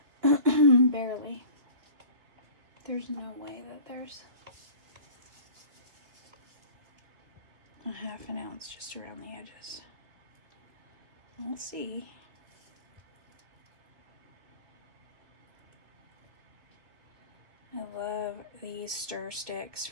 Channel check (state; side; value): late; left; 2.9 ms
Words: Barely. There's no way that there's a 1/2 ounce just around the edges. We'll see. I love these stir sticks